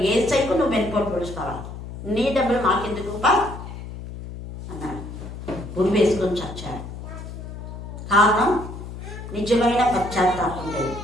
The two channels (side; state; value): left; noise; hum, 10 dB below the sound